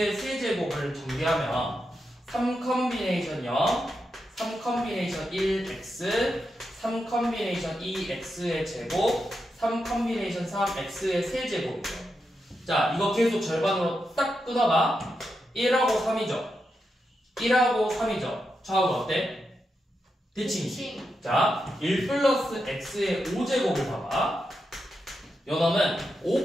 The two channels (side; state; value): both; normal; correlation 0.86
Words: 세제곱을 전개하면 3 컨비네이션 0, 3 컨비네이션 1x, 3 컨비네이션 2x의 제곱, 3 컨비네이션 3x의 세제곱이죠. 자, 이거 계속 절반으로 딱 끊어봐. 1하고 3이죠. 1하고 3이죠. 좌우가 어때? 대칭이지. 자, 1 플러스 x의 5제곱을 봐봐. 요놈은